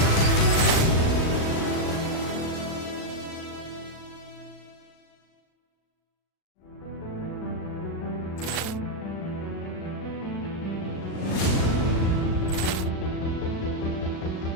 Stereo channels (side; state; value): right; late; 37 ms